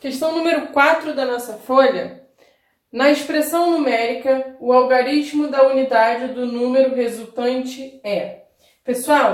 número 4 da nossa folha. Na expressão numérica, o algarismo da unidade do número resultante é.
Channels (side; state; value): both; identical; correlation 1.00